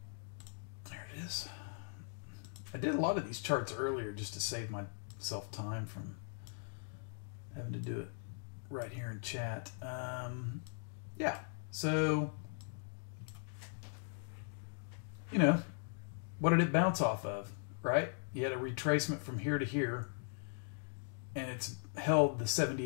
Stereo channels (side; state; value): right; silent; digital silence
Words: There it is. I did a lot of these charts earlier just to save myself time from having to do it right here in chat. Yeah, so, you know, what did it bounce off of, right? You had a retracement from here to here, and it's held the